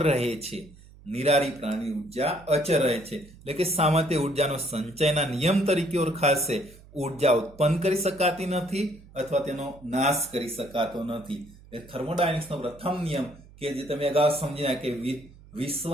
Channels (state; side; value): noise; right; hum, 22 dB below the sound